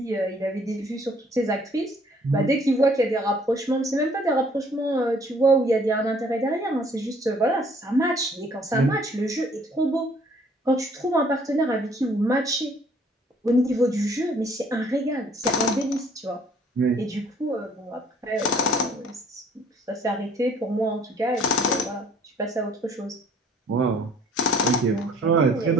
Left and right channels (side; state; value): both; normal; correlation 0.59